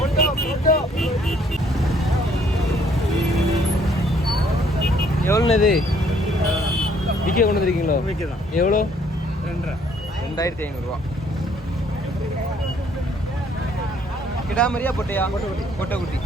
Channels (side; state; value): both; normal; correlation 0.63